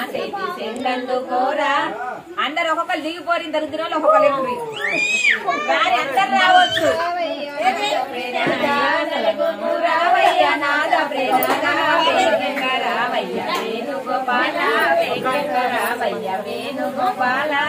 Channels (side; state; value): both; identical; correlation 1.00